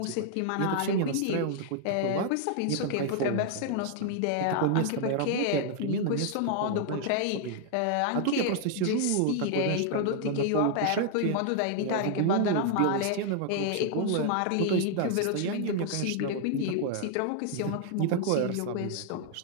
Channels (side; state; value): both; different; correlation 0.00